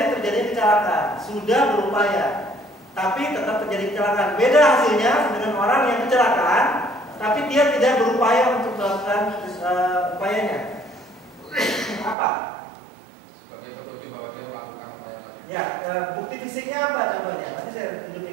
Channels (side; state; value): left; drops out; at 12.2 s